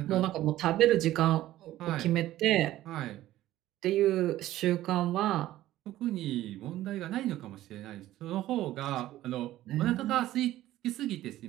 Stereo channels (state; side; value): quieter; left; 14.6 dB